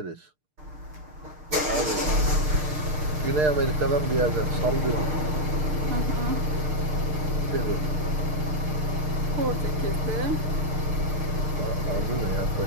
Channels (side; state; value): left; late; 6.6 ms